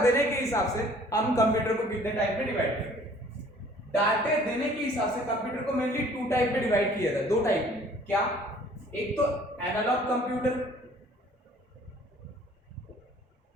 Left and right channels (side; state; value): both; normal; correlation 0.54